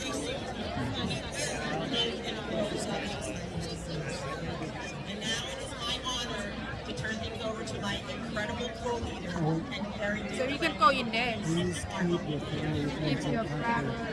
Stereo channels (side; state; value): both; identical; correlation 1.00